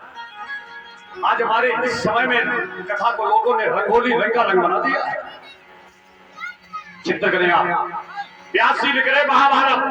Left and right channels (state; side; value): identical; both; correlation 1.00